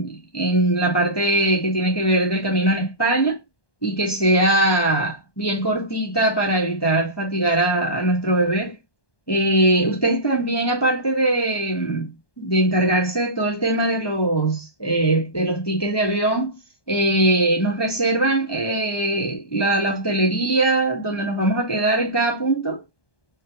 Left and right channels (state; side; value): late; right; 1.2 ms